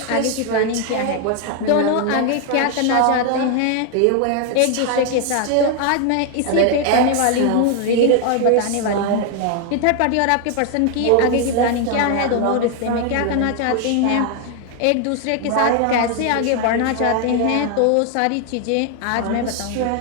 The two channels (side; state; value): both; different; correlation 0.00